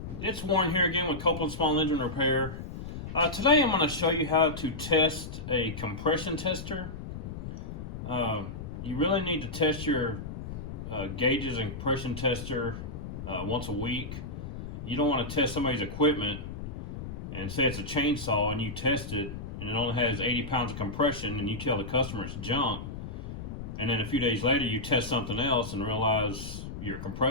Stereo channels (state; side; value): noise; left; rumble, 8 dB below the sound